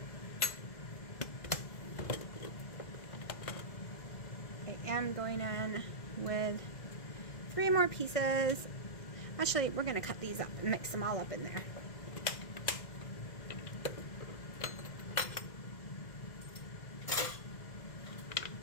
I am going in with 3 more pieces. Actually, we're going to cut these up and mix them all up in there.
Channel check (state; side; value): late; right; 2.1 ms